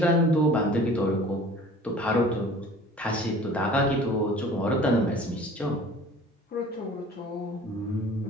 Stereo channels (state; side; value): normal; both; correlation 0.46